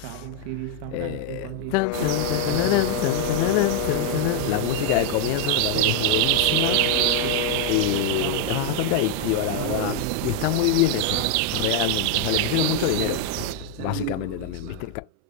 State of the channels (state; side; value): different; both; correlation 0.00